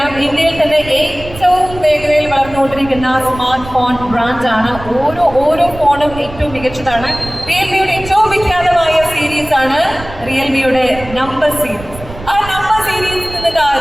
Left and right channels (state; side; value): noise; right; rumble, 14 dB below the sound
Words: ഇന്ത്യയിൽ തന്നെ ഏറ്റവും വേഗതയിൽ വളർന്നുകൊണ്ടിരിക്കുന്ന സ്മാർട്ട് ഫോൺ ബ്രാൻഡാണ്. ഓരോ ഫോണും ഏറ്റവും മികച്ചതാണ്. റിയൽമിയുടെ ഏറ്റവും വിഖ്യാതമായ സീരീസ് ആണ് റിയൽമിയുടെ നമ്പർ സീരീസ്. ആ നമ്പർ സീരീസിൽ നിന്ന്